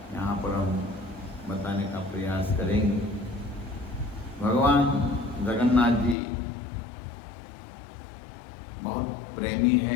यहाँ पर हम बताने का प्रयास करेंगे। भगवान जगन्नाथ जी बहुत प्रेमी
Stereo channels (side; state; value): right; drops out; at 6.2 s